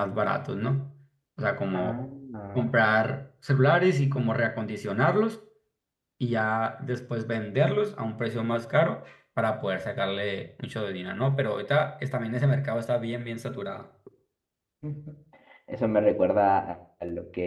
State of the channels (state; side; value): identical; both; correlation 1.00